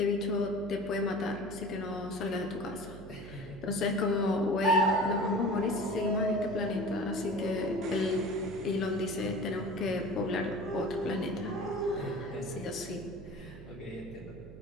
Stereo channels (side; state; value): right; noise; hum, 15 dB below the sound